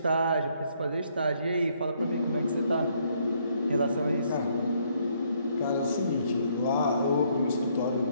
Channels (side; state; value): both; inverted; correlation -0.69